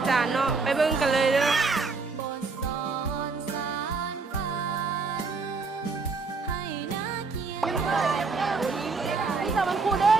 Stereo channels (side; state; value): left; quieter; 4.3 dB